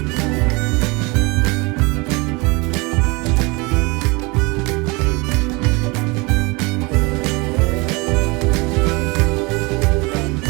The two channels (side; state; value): left; quieter; 26.5 dB